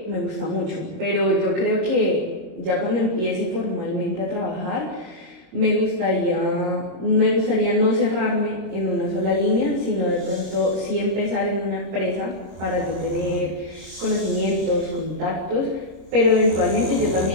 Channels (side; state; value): left; late; 26 ms